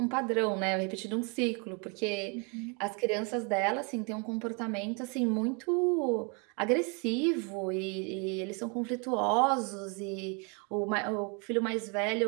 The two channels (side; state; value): left; quieter; 34.8 dB